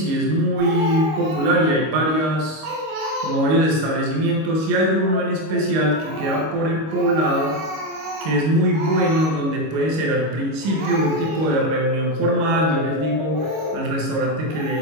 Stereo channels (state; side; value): late; left; 25 ms